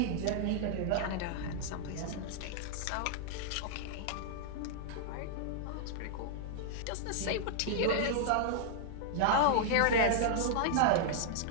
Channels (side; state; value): both; different; correlation -0.01